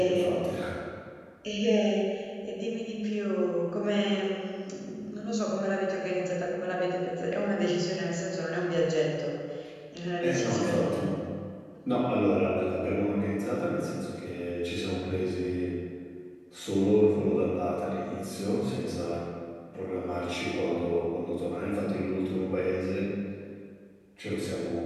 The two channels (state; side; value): identical; both; correlation 1.00